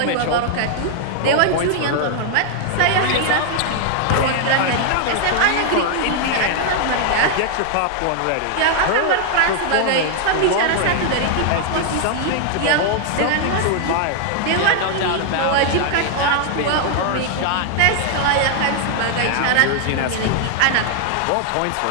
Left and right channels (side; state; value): both; different; correlation 0.00